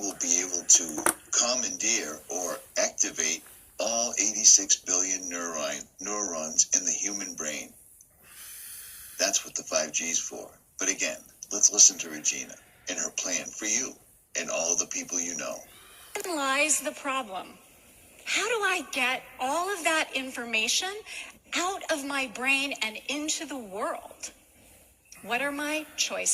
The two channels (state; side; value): identical; both; correlation 1.00